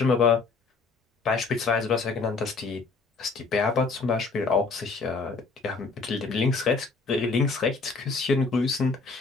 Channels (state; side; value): quieter; right; 4.3 dB